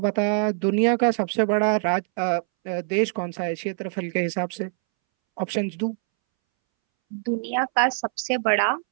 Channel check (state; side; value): silent; left; 62 dB below the other